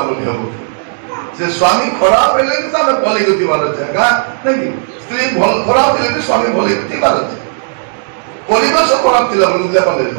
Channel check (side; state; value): left; silent; 72 dB below the other